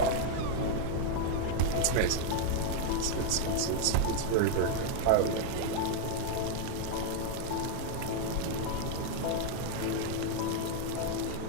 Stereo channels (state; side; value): different; both; correlation 0.00